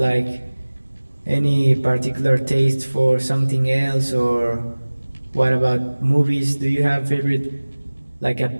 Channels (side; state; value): both; inverted; correlation -1.00